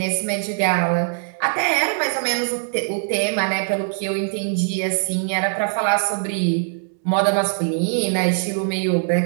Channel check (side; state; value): left; silent; digital silence